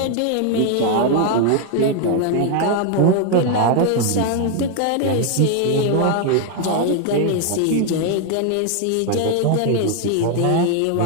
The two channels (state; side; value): different; both; correlation 0.01